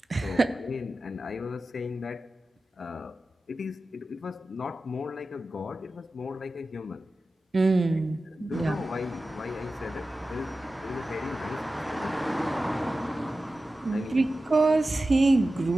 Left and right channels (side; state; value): both; normal; correlation 0.94